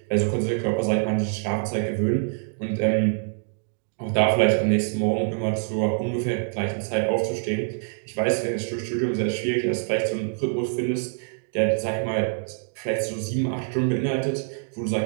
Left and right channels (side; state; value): left; silent; digital silence